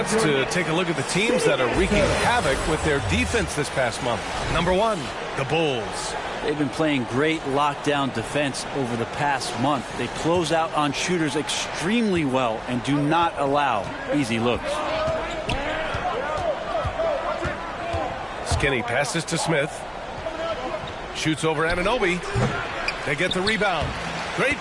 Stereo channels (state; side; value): identical; both; correlation 1.00